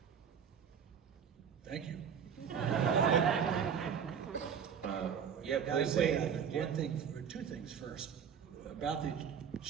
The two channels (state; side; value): quieter; left; 7.5 dB